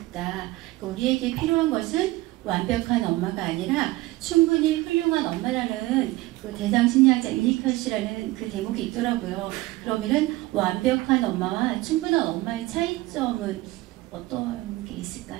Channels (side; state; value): left; quieter; 19.1 dB